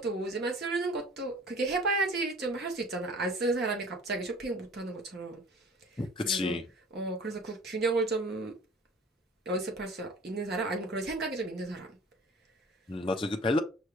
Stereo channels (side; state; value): both; normal; correlation 0.46